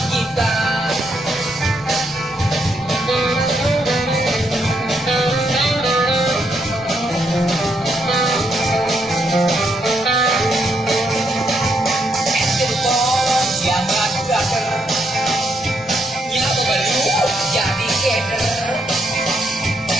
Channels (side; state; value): both; normal; correlation 0.77